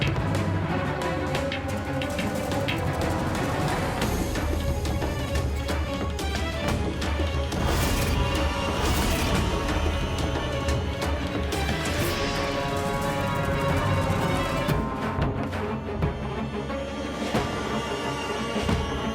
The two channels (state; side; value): identical; both; correlation 1.00